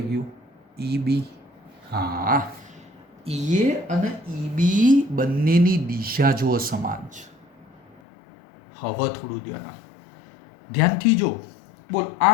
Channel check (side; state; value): right; drops out; at 8.0 s